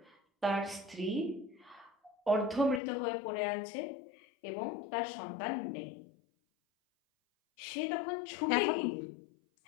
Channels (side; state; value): right; drops out; at 2.8 s